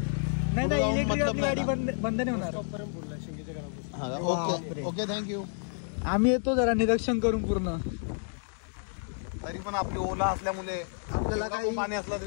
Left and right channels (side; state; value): right; silent; digital silence